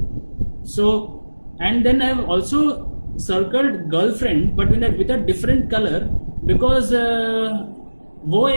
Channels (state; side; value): inverted; both; correlation -1.00